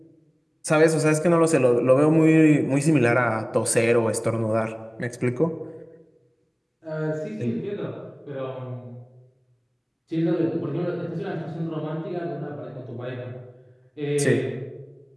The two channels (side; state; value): both; identical; correlation 1.00